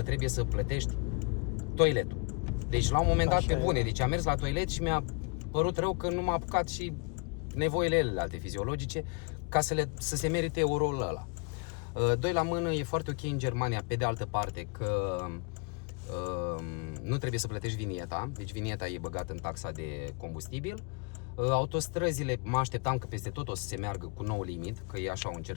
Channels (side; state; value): right; quieter; 33.6 dB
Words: trebuie să plătești toiletul. Deci la un moment dat, pe bune, deci am mers la toilet și mi-a părut rău că nu m-a apucat și nevoile alte fiziologice ca să se merite euroul ăla. Doi la mână, e foarte ok în Germania, pe de altă parte, că nu trebuie să plătești vinieta, deci vinieta e băgată în taxa de combustibil. Autostrăzile, mă așteptam că peste tot o să se meargă cu nou limit, că e așa un